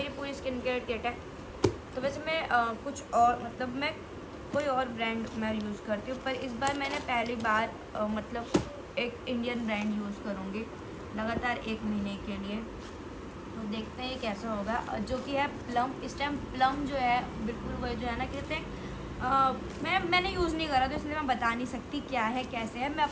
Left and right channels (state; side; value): identical; both; correlation 1.00